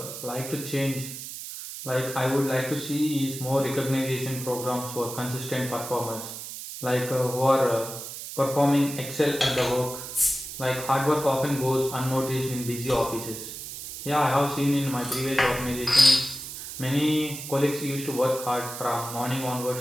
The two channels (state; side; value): noise; right; hiss, 9 dB below the sound